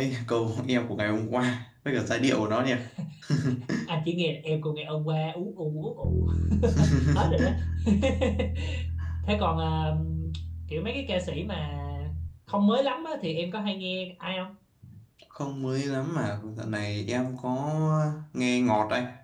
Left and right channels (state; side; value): identical; both; correlation 1.00